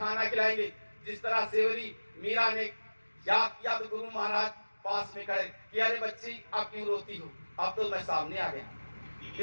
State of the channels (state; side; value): inverted; both; correlation -1.00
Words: खिलाएंगे, जिस तरह सेवरी मीरा ने याद किया तो गुरु महाराज पास में खड़े कि अरे बच्ची आप क्यों रोती हो, अब तो मैं सामने आ गया।